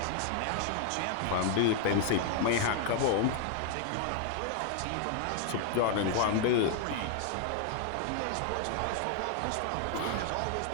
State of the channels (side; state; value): both; different; correlation 0.00